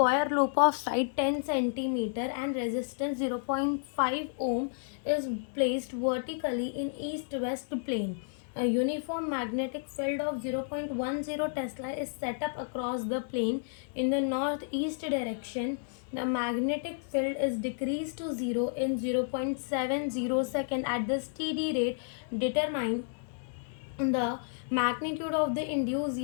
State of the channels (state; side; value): silent; right; 57 dB below the other